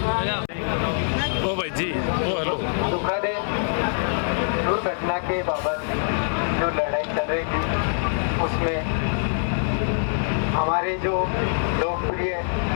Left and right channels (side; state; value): right; silent; 63 dB below the other